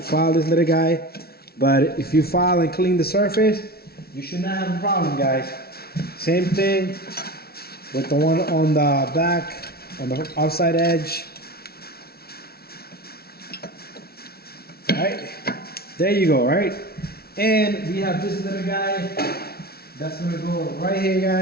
this little guy, but if you file and clean the surface, you should not have a problem, guys. Same thing with the one on the back, on the outside edge. All right, there you go, right? And we have this little guy that's gonna go right here,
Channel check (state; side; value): late; right; 0.45 ms